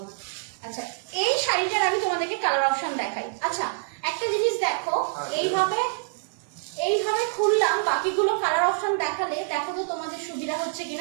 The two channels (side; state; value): left; silent; 57 dB below the other